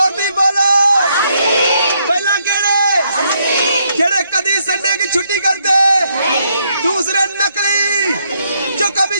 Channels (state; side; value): inverted; both; correlation -0.74